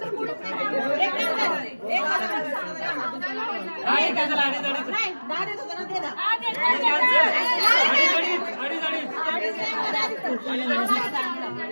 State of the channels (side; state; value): both; inverted; correlation -1.00